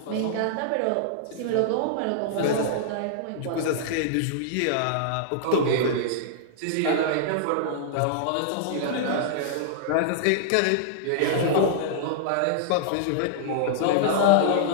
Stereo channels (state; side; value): different; both; correlation -0.02